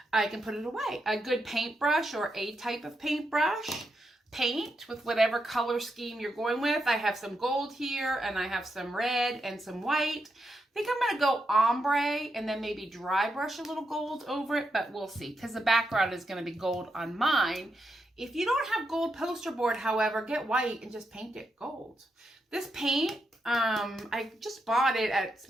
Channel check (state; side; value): normal; both; correlation 0.83